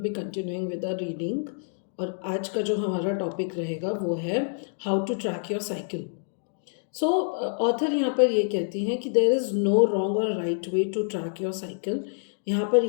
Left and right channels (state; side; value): silent; right; digital silence